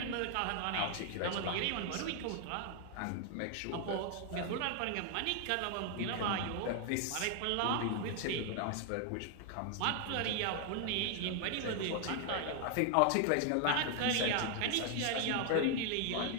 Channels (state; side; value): different; both; correlation 0.00